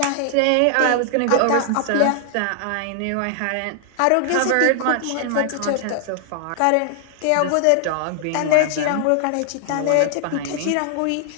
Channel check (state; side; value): different; both; correlation 0.00